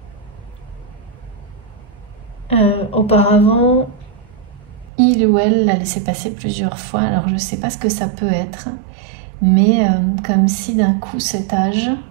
auparavant il ou elle l'a laissé passer plusieurs fois. Alors je ne sais pas ce que ça peut être, mais comme si d'un coup cet âge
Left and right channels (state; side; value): drops out; left; at 4.9 s